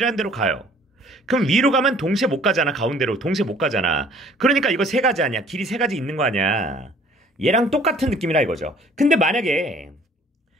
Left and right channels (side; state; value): both; normal; correlation 0.55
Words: 데로 가요. 그럼 위로 가면 동시에 못 가잖아. 가운데로. 동시에 못 가잖아. 그러니까 이거 3가지 아니야. 길이 3가지 있는 거 아니야. 얘랑 똑같은 느낌이라 이거죠. 근데 만약에